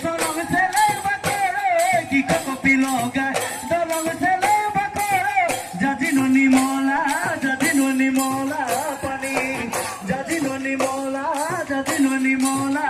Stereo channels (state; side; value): identical; both; correlation 1.00